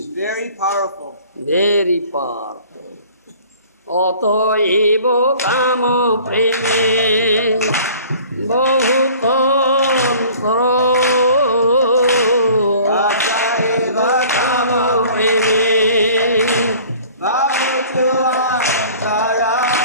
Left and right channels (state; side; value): inverted; both; correlation -0.49